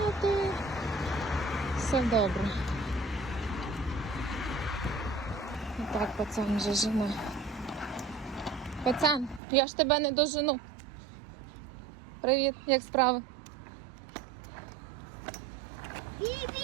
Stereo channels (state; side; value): drops out; left; at 9.4 s